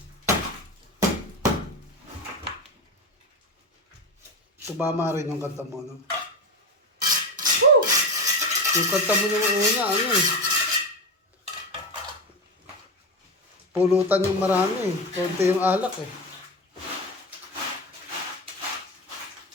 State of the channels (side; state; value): both; normal; correlation 0.20